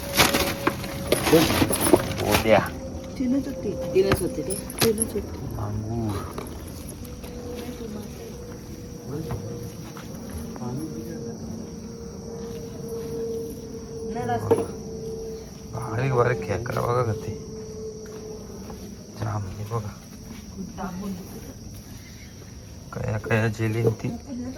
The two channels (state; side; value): identical; both; correlation 1.00